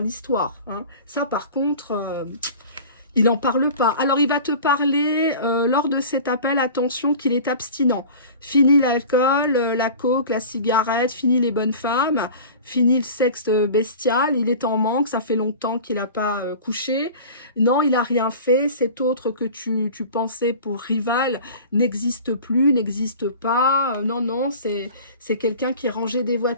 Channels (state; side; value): inverted; both; correlation -0.39